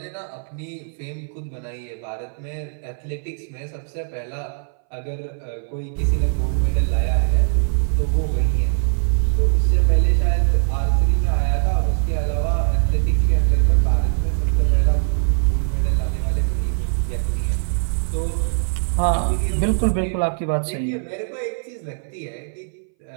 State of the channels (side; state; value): left; silent; 61 dB below the other